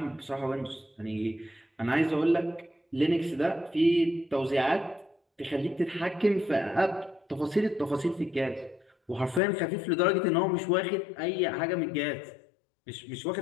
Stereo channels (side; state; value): right; drops out; at 9.4 s